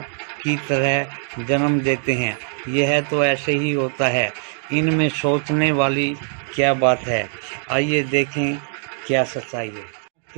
की तरह जन्म देते हैं। यह तो ऐसे ही होता है। इनमें सोचने वाली क्या बात है। आइए देखें क्या सच्चाई है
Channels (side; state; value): left; silent; digital silence